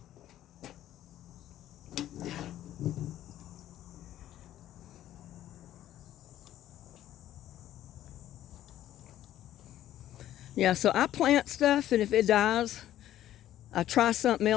Yeah, so I plant stuff, and if it dies, I try something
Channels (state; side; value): quieter; right; 12.7 dB